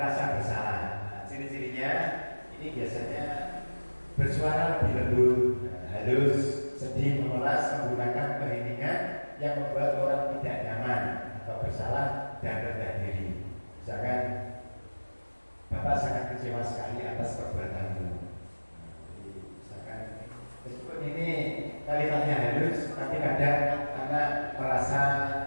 rasa bersalah. Nah, ciri-cirinya ini biasanya bersuara lebih lembut, halus, sedih, memelas, menggunakan keheningan yang membuat orang tidak nyaman atau bersalah dan rendah diri. Misalkan, Bapak sangat kecewa sekali atas perbuatanmu. Misalkan, meskipun ini kalimatnya halus, tapi kadang anak merasa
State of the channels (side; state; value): both; inverted; correlation -1.00